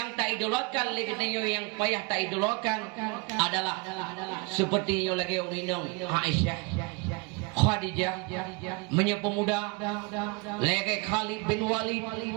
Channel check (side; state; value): left; quieter; 29.9 dB